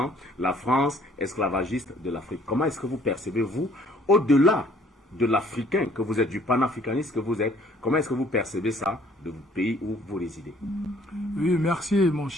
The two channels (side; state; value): both; normal; correlation 0.59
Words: la France esclavagiste de l'Afrique. Comment est-ce que vous percevez, vous, au-delà de l'Africain que vous êtes, du panafricaniste que vous êtes, comment est-ce que vous percevez ça de votre pays où vous résidez? Oui, merci mon